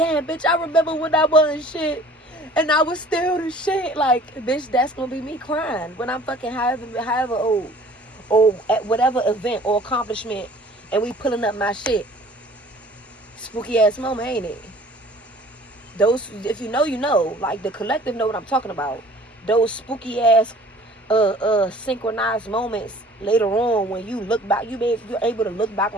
bitch, I remember when I wasn't shit and I was still the shit. Like, bitch, that's gonna be me crying when I'm fucking however old or at whatever event or accomplishment and we pulling up my shit. Spooky ass moment, ain't it? Those, if you know, you know. Like, the collective know what I'm talking about. Those spooky ass synchronized moments later on when you look back, you're able to look back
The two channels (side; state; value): both; normal; correlation 0.50